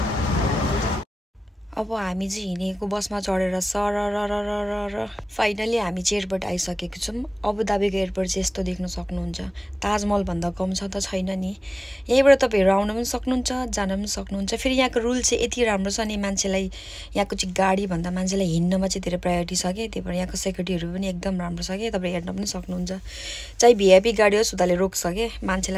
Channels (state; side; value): normal; both; correlation 0.98